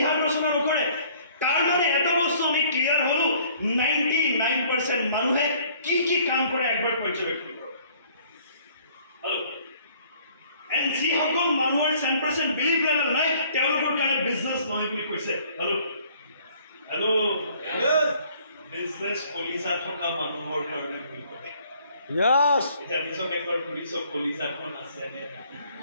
ৰচনা নকৰে তাৰ মানে এটা বস্তু আমি ক্লিয়াৰ হলো 99% মানুহে কি কি কাম কৰে একবাৰ পৰ্যবেক্ষণ কৰক হেল্ল এণ্ড যিসকল মানুহৰ 10% বিলিভ লেভেল নাই তেওঁলোকৰ কাৰণে বিজনেছ নহয় বুলি কৈছে হেল্ল হেল্ল বিজনেছ কলিজা থকা মানুহৰ কাৰণে বুলি কয় Yes. এটা নিজক একবাৰ পুলিচৰ কলিজাখন আছে নে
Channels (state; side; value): inverted; both; correlation -0.58